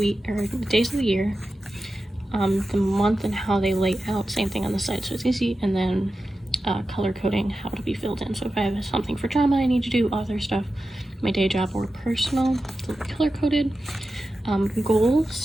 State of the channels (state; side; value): normal; both; correlation 0.93